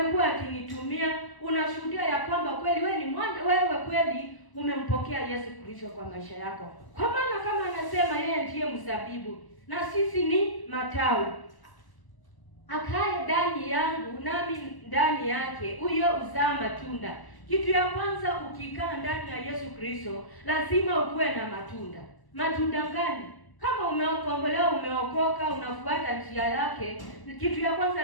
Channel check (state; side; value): late; right; 1.0 ms